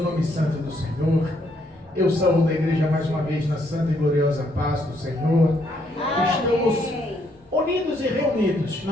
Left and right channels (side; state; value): both; normal; correlation 0.72